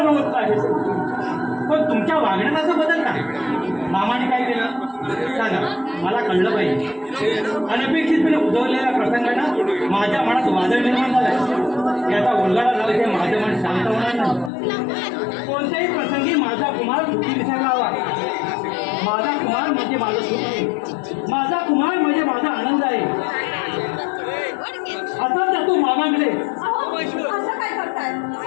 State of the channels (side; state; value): right; drops out; at 14.5 s